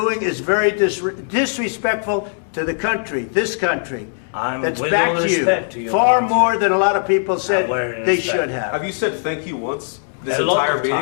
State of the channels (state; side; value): silent; right; 64 dB below the other